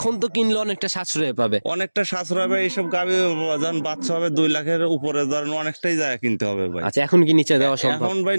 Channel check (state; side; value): inverted; both; correlation -1.00